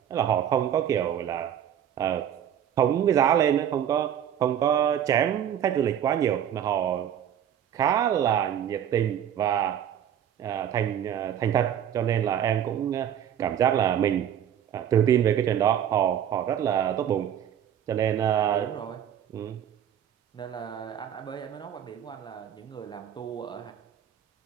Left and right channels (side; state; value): left; quieter; 9.8 dB